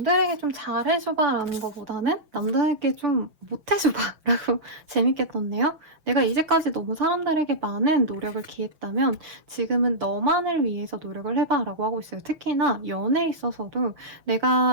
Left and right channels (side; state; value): left; late; 6.1 ms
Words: 좀 잘해줘봐 라는 것보다는 남들에게 좀 못해줘봐 라고 재밌게 떴네요. 내가 이제까지 너무 사람들에게 많은 노력을 기했다면 지금은 너만을 위해서 노력을 해봐 라고 하고 있어요. 특히나 연애에 있어서도